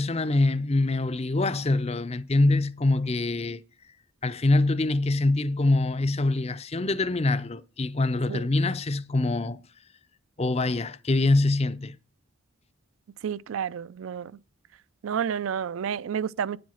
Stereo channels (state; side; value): normal; both; correlation 0.76